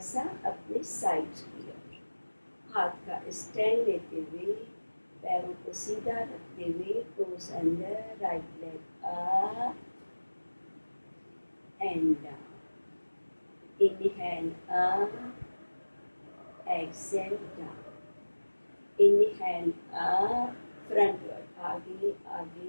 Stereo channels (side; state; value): both; inverted; correlation -1.00